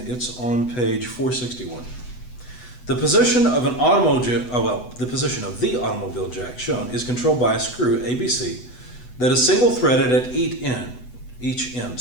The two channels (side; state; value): right; late; 8.1 ms